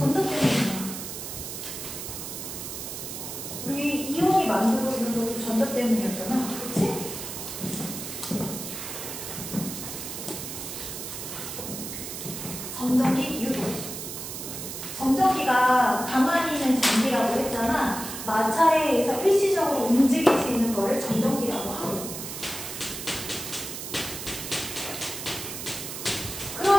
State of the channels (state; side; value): noise; right; hiss, 7 dB below the sound